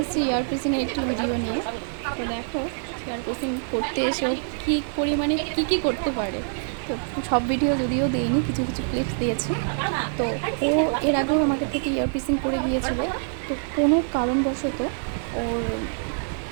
ইয়ার পিসিংয়ের একটি ভিডিও নিয়ে। তো দেখো ইয়ার পিসিং করতে এসেও কী পরিমাণে কী করতে পারে। তো সব ভিডিও যদিও দিইনি, কিছু কিছু ক্লিপস দিয়েছি। তো ও এর আগেও আমাকে থেকে ইয়ার পিসিং করে গিয়েছিল। তো কোনো কারণবশত ওর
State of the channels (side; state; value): left; silent; digital silence